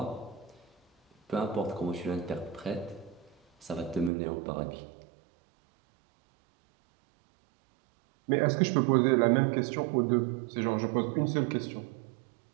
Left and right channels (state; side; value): drops out; left; at 4.1 s